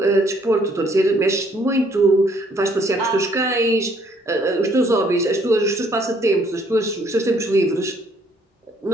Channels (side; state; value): both; normal; correlation 0.65